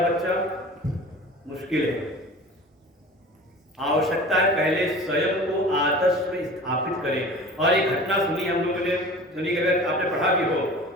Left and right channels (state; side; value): normal; both; correlation 0.39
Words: बच्चा, मुश्किल है। आवश्यकता है पहले स्वयं को आदर्श में स्थापित करें। और एक घटना सुनी हम लोगों ने, सुनी अगर आपने पढ़ा भी हो,